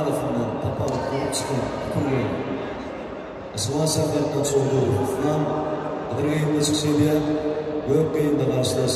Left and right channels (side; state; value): both; identical; correlation 1.00